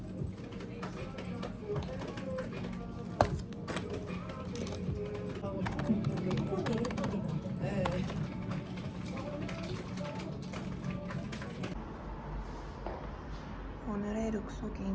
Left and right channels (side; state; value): both; identical; correlation 1.00